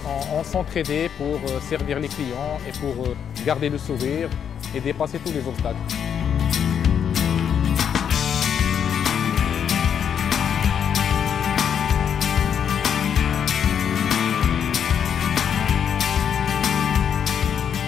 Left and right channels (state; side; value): quieter; right; 8.1 dB